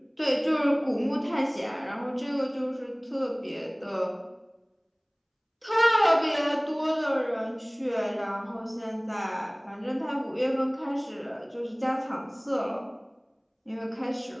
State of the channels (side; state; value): both; identical; correlation 1.00